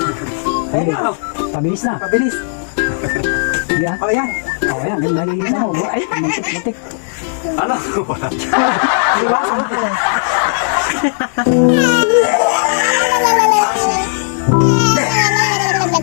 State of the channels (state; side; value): silent; right; digital silence